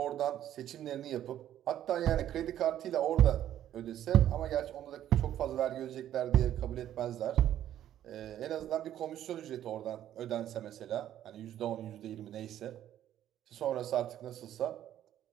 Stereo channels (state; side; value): quieter; left; 11.6 dB